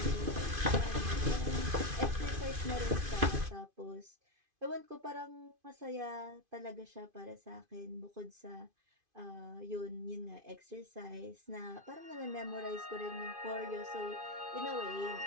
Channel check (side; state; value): left; late; 2.5 ms